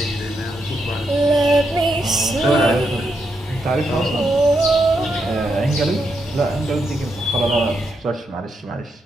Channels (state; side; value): normal; both; correlation 0.81